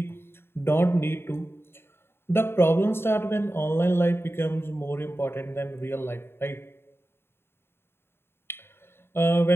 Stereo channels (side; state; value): right; late; 0.11 ms